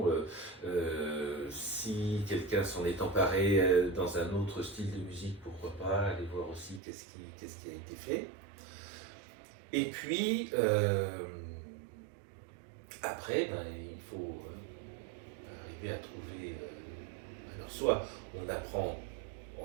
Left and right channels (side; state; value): left; drops out; at 6.8 s